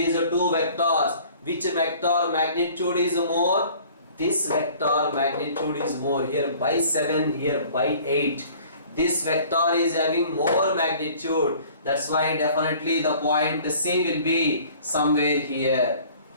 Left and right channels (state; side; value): inverted; both; correlation -0.51